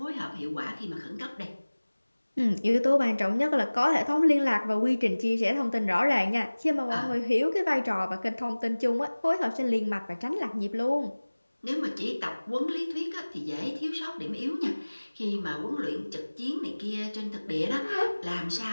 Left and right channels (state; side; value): inverted; both; correlation -1.00